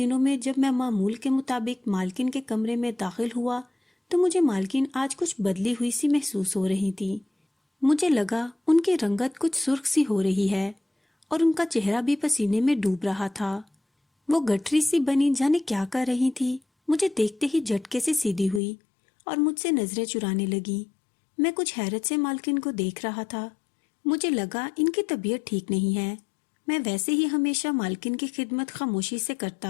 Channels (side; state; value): right; drops out; at 18.6 s